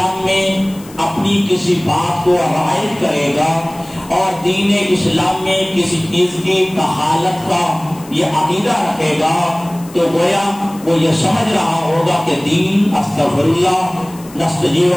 میں اپنی کسی بات کو رعایت کرے گا اور دین اسلام میں کسی چیز کی کفالت کا یہ عقیدہ رکھے گا، تو گویا وہ یہ سمجھ رہا ہوگا کہ دین استغفر اللہ نستجیب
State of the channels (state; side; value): noise; left; hiss, 21 dB below the sound